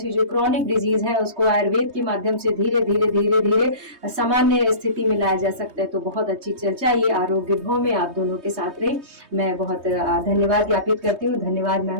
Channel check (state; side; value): late; left; 3.2 ms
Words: जो क्रॉनिक डिजीज है उसको आयुर्वेद के माध्यम से धीरे धीरे धीरे धीरे सामान्य स्थिति में लाया जा सकता है। तो बहुत अच्छी चर्चा ये आरोग्य भव में आप दोनों के साथ रही। मैं बहुत धन्यवाद ज्ञापित करती हूँ। धन्यवाद